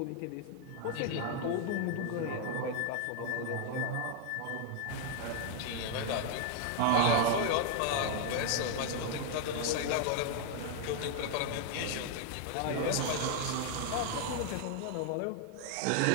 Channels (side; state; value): both; different; correlation 0.00